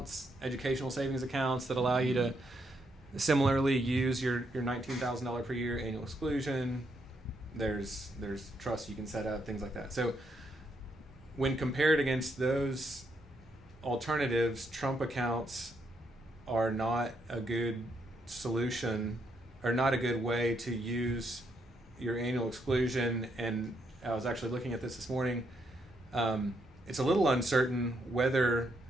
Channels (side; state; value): both; normal; correlation 0.76